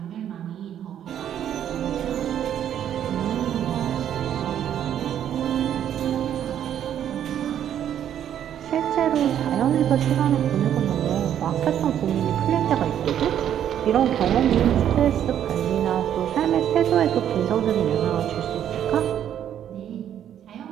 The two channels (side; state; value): left; quieter; 10.1 dB